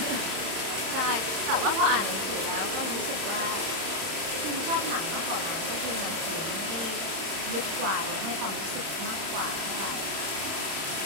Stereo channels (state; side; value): late; left; 31 ms